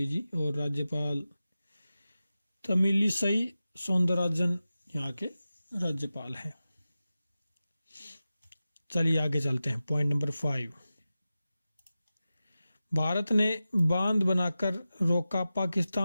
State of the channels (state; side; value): inverted; both; correlation -0.94